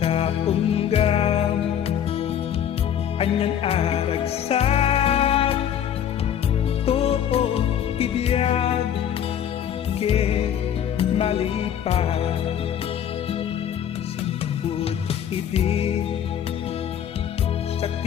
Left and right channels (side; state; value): right; quieter; 9.5 dB